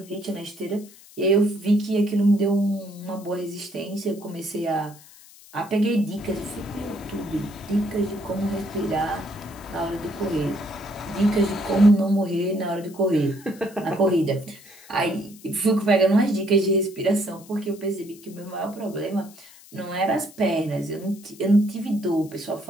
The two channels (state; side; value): noise; left; hiss, 22 dB below the sound